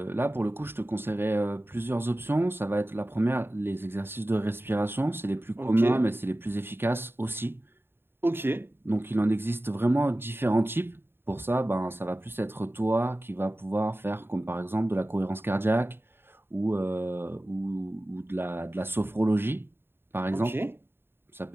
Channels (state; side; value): late; left; 0.11 ms